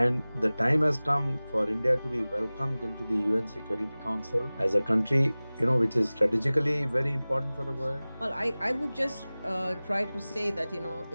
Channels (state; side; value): inverted; both; correlation -0.99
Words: the time has come for India to be welcomed into the UN Security Council as a country, which is strategically very important for the world. Well, I would just try to say that,